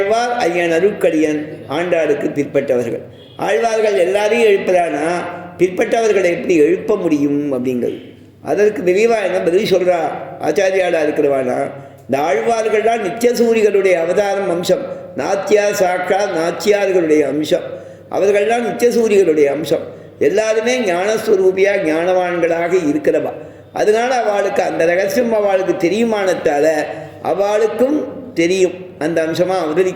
ஐயன் அருட்கடியன் ஆண்டாளுக்கு பிற்பட்டவர்கள். ஆழ்வார்கள் எல்லாரையும் எழுப்புறானா பிற்பட்டவர்களை எப்படி எழுப்ப முடியும் அப்படிங்கிறது. அதற்கு விரிவாக என்ன பதில் சொல்கிறா ஆச்சாரியாளாக இருக்கிறவானா, இந்த ஆழ்வார்கள்லாம் நித்தியசூரிகளுடைய அவதாரம் அம்சம், நாச்சியார் சாக்கா நாச்சியார்களுடைய அம்சம், அவர்கள்லாம் நித்தியசூரிகளுடைய அம்சம். எல்லாருமே ஞானஸ்வரூபியாக ஞானவான்களாக இருக்கிறவா. அதனால் அவளுக்கு அந்த ரகசியம் அவளுக்கு தெரியுமானத்தால் அவளுக்கும் தெரியும். அந்த அம்சமாக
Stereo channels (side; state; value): both; identical; correlation 1.00